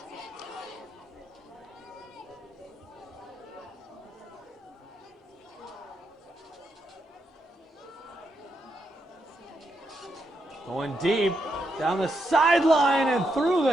Going deep down the sideline and through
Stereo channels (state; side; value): normal; both; correlation 0.82